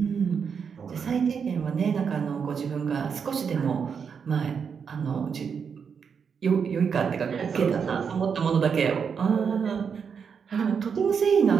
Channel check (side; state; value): left; quieter; 6.5 dB